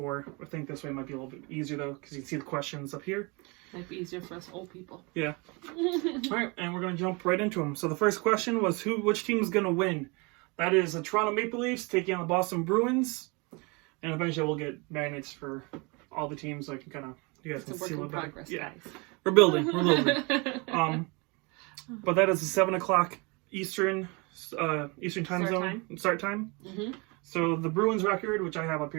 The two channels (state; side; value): quieter; left; 28.8 dB